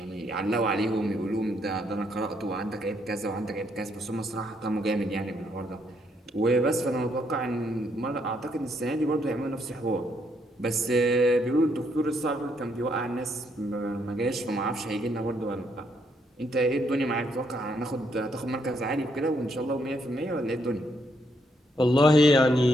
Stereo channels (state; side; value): normal; both; correlation 0.74